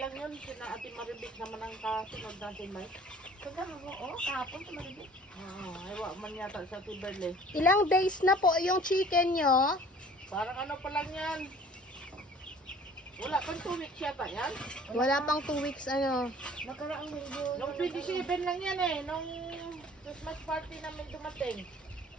yun. Sina Ate Maribik naman ang kasunod natin, Mike. Kahapon sa Maribik. Ay, wak man yata sa Ate Berle. Ilang days na po yung chicken nyo? Parang ano pa lang yan. Wala pang 2 weeks yata yan. Wala pang 2 weeks ano. Nakaraang linggo. Nung 27 lang yan eh. Nung Christmas party namin dumating.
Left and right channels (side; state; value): both; normal; correlation 0.49